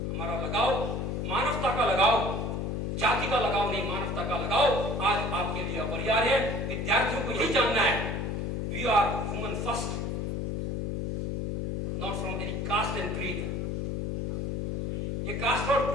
हमारा लगाव, मानवता का लगाव, जाति का लगाव नहीं, मानवता का लगाव आज आपके लिए अपरिहार्य है। विद्यार्थियों को यही जानना है, we are human first, not from any caste and creed. ये कास्ट और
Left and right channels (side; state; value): left; noise; hum, 2 dB below the sound